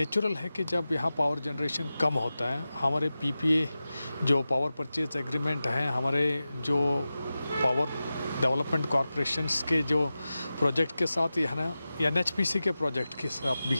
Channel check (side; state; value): both; inverted; correlation -0.94